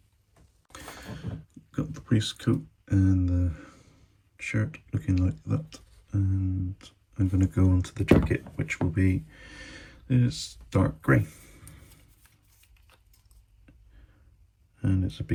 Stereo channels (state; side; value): identical; both; correlation 1.00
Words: Got the priest coat and the shirt looking like that, and I'm going to go onto the jacket, which will be this dark grey. And it's a